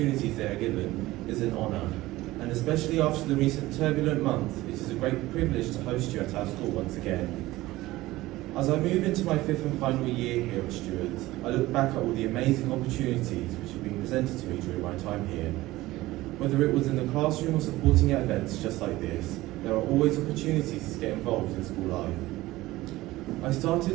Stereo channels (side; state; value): left; quieter; 17.9 dB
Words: they are given, is an honour. And especially after the recent turbulent month, it is a great privilege to host you at our school once again. As I move into my 5th and final year here at Stewards, I look back at all the amazing opportunities which have been presented to me during my time here. Whether it was in the classroom or supporting at events just like this, there are always opportunities to get involved in school life. I